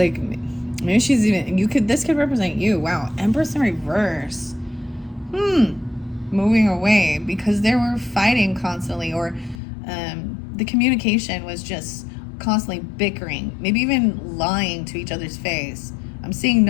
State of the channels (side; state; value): right; drops out; at 9.6 s